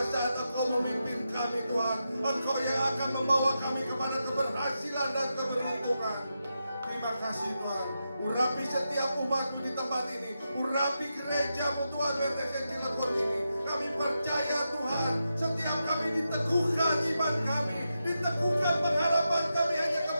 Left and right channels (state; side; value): inverted; both; correlation -0.87